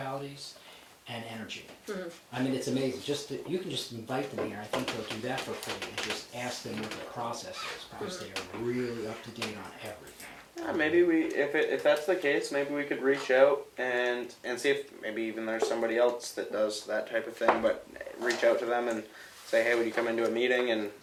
and energy. I mean, it's amazing. You can just invite them here. I think they'll do that for free and just ask them what their process is, because they are really up to date on everything. Maybe if that's the case, maybe we could reach out and see if maybe even there's somebody else that does that type of thing. But reach out to them and say, hey, would you come into a meeting and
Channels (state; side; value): identical; both; correlation 1.00